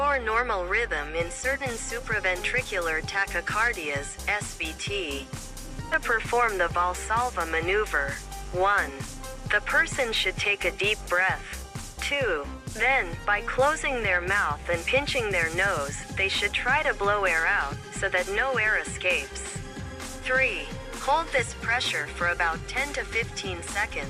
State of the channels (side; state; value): both; identical; correlation 1.00